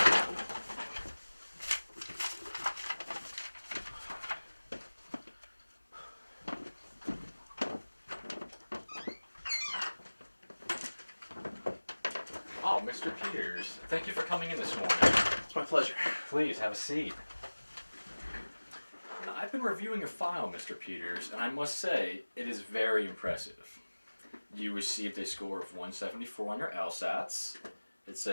Oh, Mr. Peters, thank you for coming in this morning. It's my pleasure. Please, have a seat. Now, I've been reviewing your file, Mr. Peters, and I must say, it is very impressive. You received a score of 174 on your LSATs. It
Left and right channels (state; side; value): inverted; both; correlation -1.00